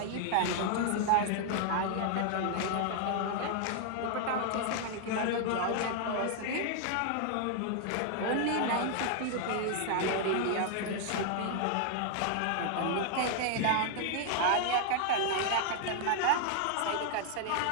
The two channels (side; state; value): both; different; correlation 0.00